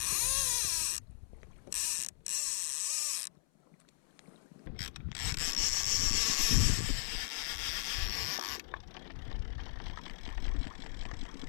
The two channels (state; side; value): silent; right; 53 dB below the other